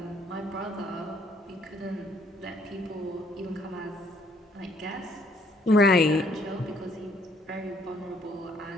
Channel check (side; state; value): both; normal; correlation 0.65